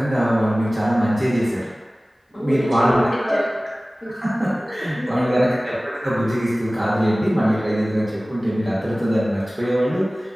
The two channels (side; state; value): both; normal; correlation 0.98